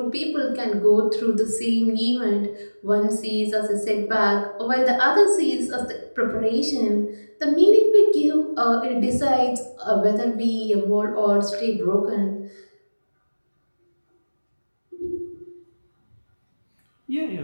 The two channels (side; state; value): both; inverted; correlation -1.00